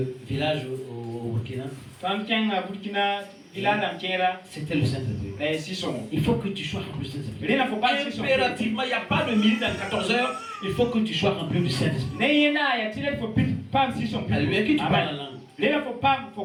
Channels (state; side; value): identical; both; correlation 1.00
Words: villages au Burkina. C'était le Saint-Esprit. Il faut que tu sois rempli du Saint-Esprit. Impérativement, il n'y a pas de minute dans 14 heures. Il faut que tu sois rempli du Saint-Esprit. Alléluia, que tu parles en langue.